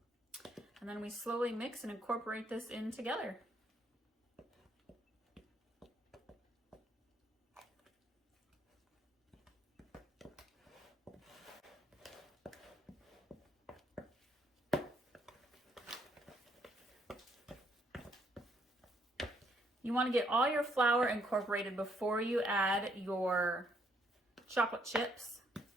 then we slowly mix and incorporate this in together. You want to get all your flour incorporated before you add your chocolate chips.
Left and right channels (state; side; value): normal; both; correlation 0.70